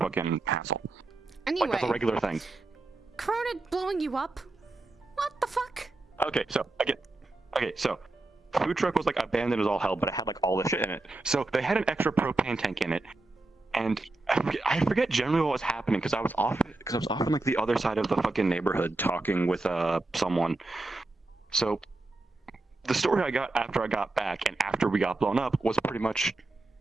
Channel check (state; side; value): quieter; left; 3.1 dB